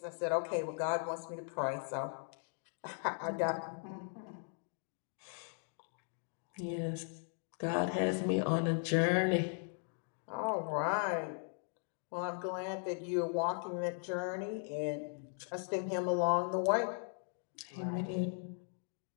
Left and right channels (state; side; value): silent; right; 52 dB below the other